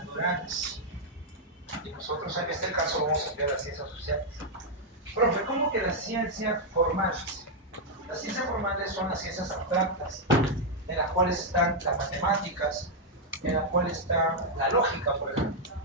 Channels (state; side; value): normal; both; correlation -0.03